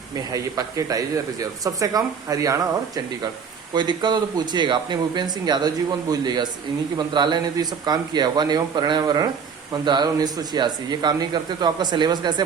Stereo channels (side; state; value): left; quieter; 6.4 dB